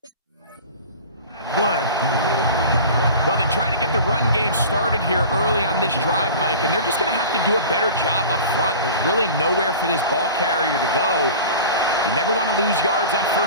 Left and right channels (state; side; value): inverted; both; correlation -0.37